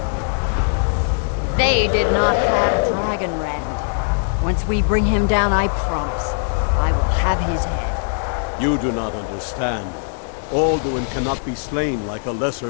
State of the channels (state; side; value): silent; right; 57 dB below the other